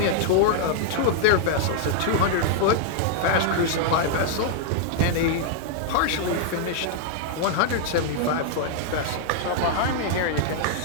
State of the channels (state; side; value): different; both; correlation -0.01